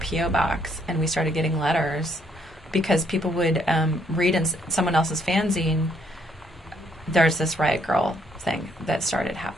box, and we started getting letters because people would read in someone else's fanzine, there's this Riot Grrrl thing that started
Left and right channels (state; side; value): normal; both; correlation 0.69